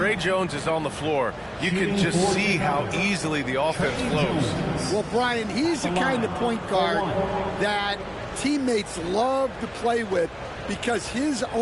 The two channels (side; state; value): both; identical; correlation 1.00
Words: Jones is on the floor, you can just see how easily the offense flows. Well, Brian, he's the kind of point guard that teammates love to play with because his